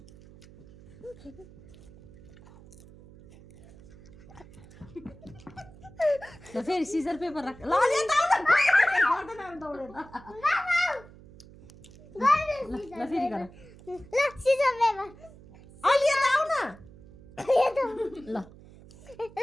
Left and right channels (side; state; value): right; noise; hum, 21 dB below the sound